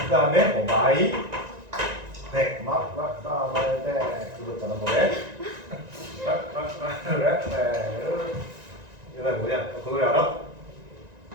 다음에 마이 백, 마이 백 그거 있잖아 노래. 이 노래 뭐냐? 그 노래 알아?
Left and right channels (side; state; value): left; late; 1.9 ms